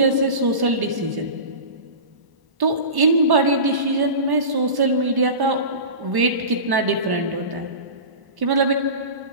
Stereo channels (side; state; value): left; late; 1.1 ms